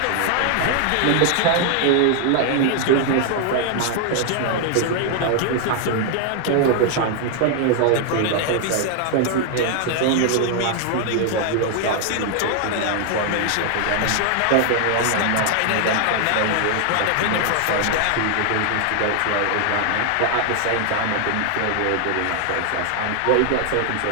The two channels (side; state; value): both; different; correlation 0.00